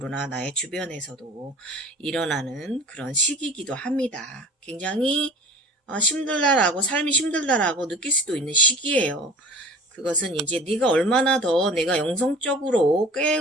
나의 주변에서도 일어나는 그런 시기이기도 합니다. 굉장히 힘들다라고, 삶이 힘들다라고 느낄 수도 있는 시기예요. 그것은 이제 네가 얼마나 더 내가 영성적으로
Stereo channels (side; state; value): both; normal; correlation 0.42